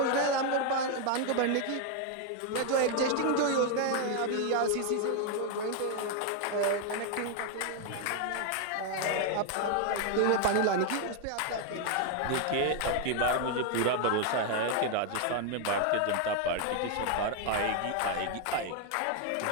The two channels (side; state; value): both; different; correlation 0.00